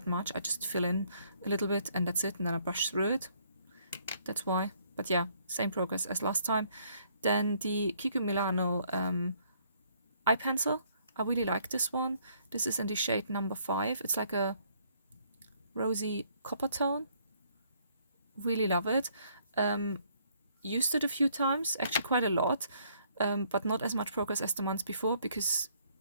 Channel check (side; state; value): both; inverted; correlation -0.66